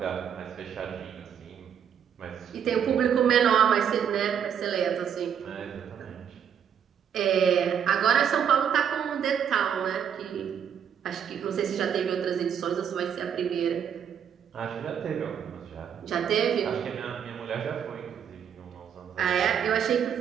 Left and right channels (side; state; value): left; quieter; 8.3 dB